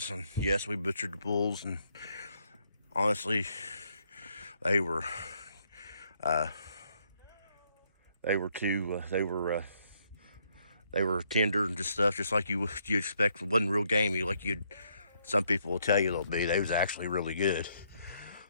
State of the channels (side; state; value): both; inverted; correlation -0.72